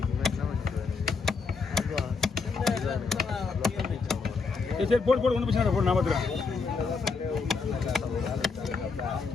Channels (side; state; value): right; quieter; 4.7 dB